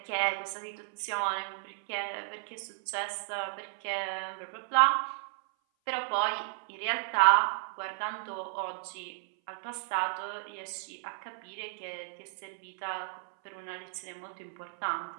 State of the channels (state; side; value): silent; left; 55 dB below the other